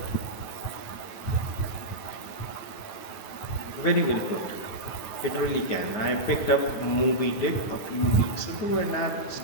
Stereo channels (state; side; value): late; right; 9.3 ms